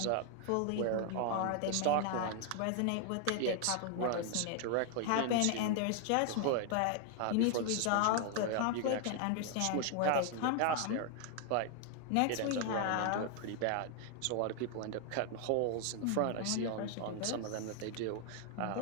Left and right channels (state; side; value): different; both; correlation 0.00